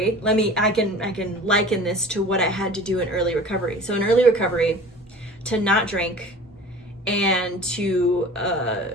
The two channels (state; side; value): normal; both; correlation 0.42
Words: I can liken this to what I had to do in early recovery. So in early recovery, to not drink and to